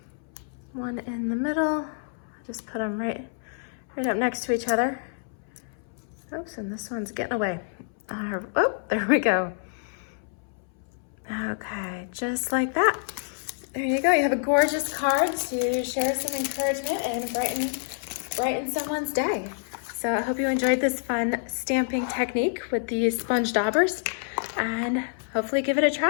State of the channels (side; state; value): right; silent; 60 dB below the other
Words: 1 in the middle. Just put them right up next to each other. Oops, and this one's getting away. Oh, there we go. Okay, just like that. There you go. You have a gorgeous card to share some encouragement and brighten someone's day. So I hope you enjoyed this fun stamping technique with the sponge daubers, and hopefully give it a